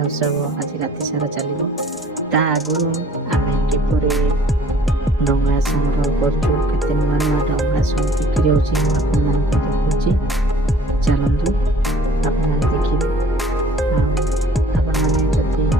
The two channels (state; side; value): normal; both; correlation 0.54